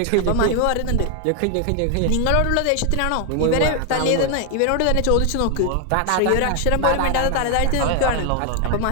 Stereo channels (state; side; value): different; both; correlation 0.00